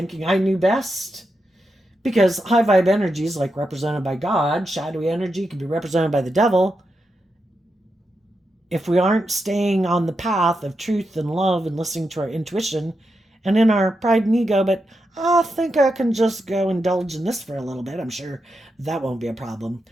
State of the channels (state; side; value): normal; both; correlation 0.86